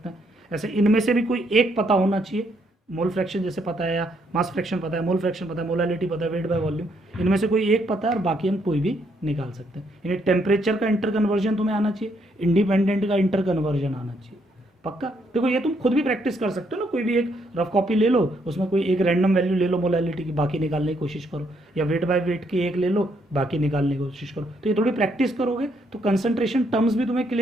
हैं। ऐसे इनमें से भी कोई एक पता होना चाहिए, मोल फ्रैक्शन जैसे पता है, या मास फ्रैक्शन पता है, मोल फ्रैक्शन पता है, मोलैलिटी पता है, वेट बाय वॉल्यूम, इनमें से कोई एक पता है और बाकी हम कोई भी निकाल सकते हैं। यानी टेम्परेचर का इंटर कन्वर्जन तुम्हें आना चाहिए, इंडिपेंडेंट का इंटर कन्वर्जन आना चाहिए, पक्का। देखो ये तुम खुद भी प्रैक्टिस कर सकते हो ना, कोई भी एक रफ कॉपी ले लो, उसमें कोई एक रैंडम वैल्यू ले लो मोलैलिटी की, बाकी निकालने की कोशिश करो, या वेट बाय वेट की एक ले लो, बाकी निकालने की कोशिश करो। तो ये थोड़ी प्रैक्टिस करोगे तो कंसंट्रेशन टर्म्स भी तुम्हें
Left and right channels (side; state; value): both; normal; correlation 0.73